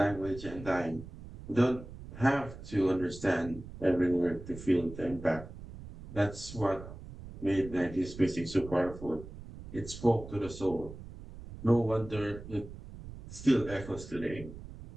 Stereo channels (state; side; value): noise; right; rumble, 14 dB below the sound